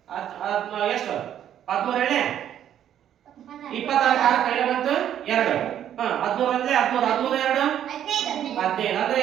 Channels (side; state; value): left; quieter; 10.4 dB